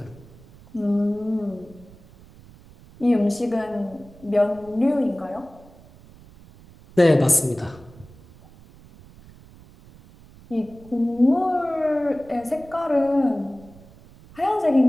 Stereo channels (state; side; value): noise; right; rumble, 23 dB below the sound